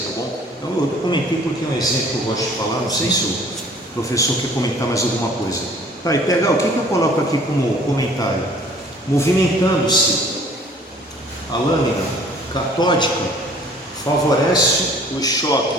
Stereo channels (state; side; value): normal; both; correlation 0.53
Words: tá bom? Então, eu comentei porque é um exemplo que eu gosto de falar, não sei se o professor quer comentar mais alguma coisa. Tá, e pegar, o que eu coloco aqui como comentário? Movimentando-se a lâmina catódica favorece os